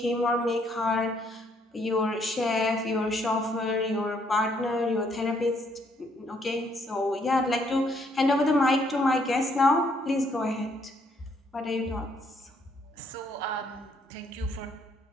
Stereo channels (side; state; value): both; normal; correlation 0.69